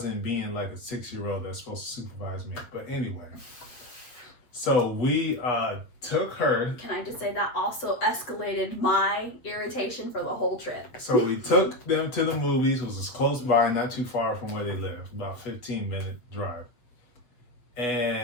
being like a 6-year-old that's supposed to supervise me. But anyway. So we took her. Can I just say that also escalated my irritation for the whole trip? So we took them to the movies. It was just close by, not too far from where they live, about 15-minute drive.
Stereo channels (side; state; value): right; late; 7.8 ms